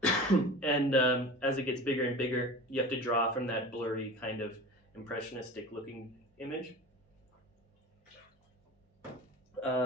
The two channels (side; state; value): both; normal; correlation 0.35